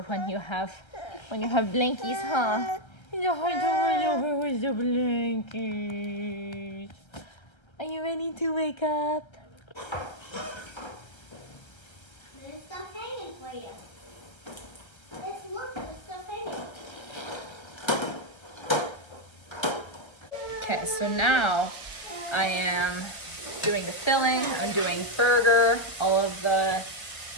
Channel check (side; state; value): right; late; 1.3 ms